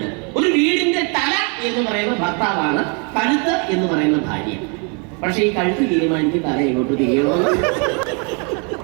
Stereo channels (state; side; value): quieter; left; 35.9 dB